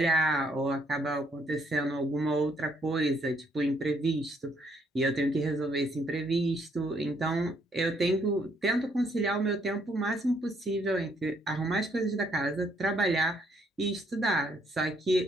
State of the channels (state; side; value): normal; both; correlation 0.69